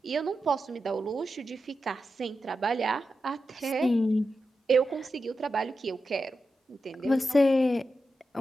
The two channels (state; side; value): normal; both; correlation 0.90